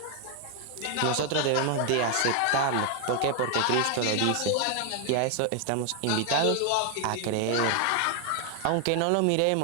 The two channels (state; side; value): different; both; correlation 0.00